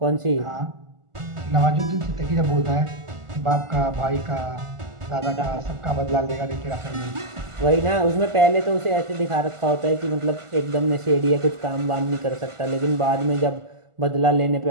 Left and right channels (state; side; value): late; left; 1.4 ms